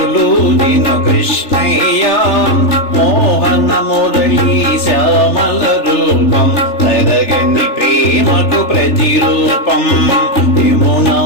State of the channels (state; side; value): late; right; 3.4 ms